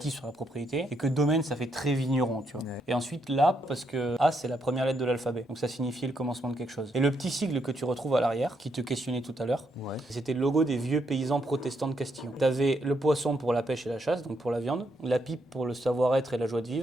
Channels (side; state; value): both; normal; correlation 0.77